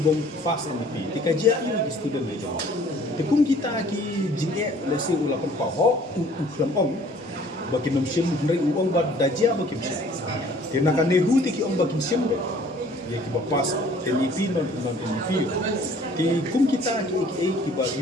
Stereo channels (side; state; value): both; normal; correlation 0.54